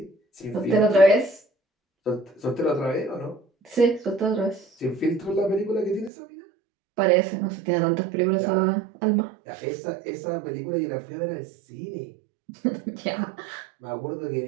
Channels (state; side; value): drops out; left; at 6.1 s